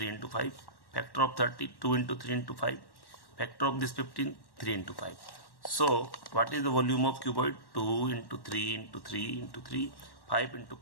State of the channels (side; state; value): right; late; 1.1 ms